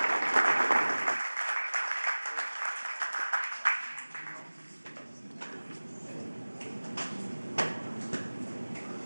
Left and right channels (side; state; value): both; inverted; correlation -1.00